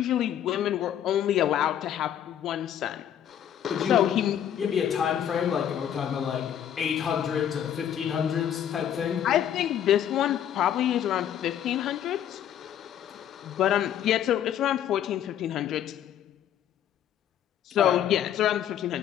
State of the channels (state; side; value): quieter; right; 10.1 dB